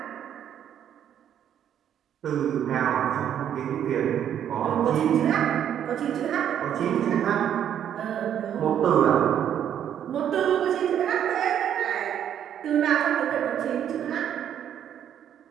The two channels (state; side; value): quieter; left; 9.7 dB